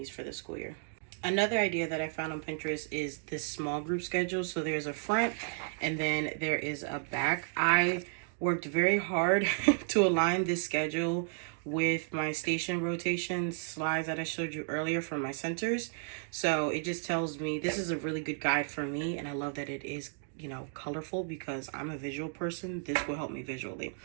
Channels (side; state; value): left; silent; 56 dB below the other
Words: for the school year. Another idea that I found on Pinterest is this small group schedule. So there's a front and then there is a back. I worked very hard to align this schedule with my station rotation slides that I showed you earlier from my centers. So it just tells me this is a really good guide for me, and I love that it is, you know, colorful because I'm a visual person. This will help me visually.